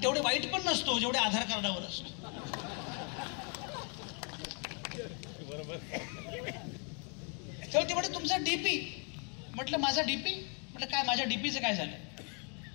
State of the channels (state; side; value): quieter; right; 38.3 dB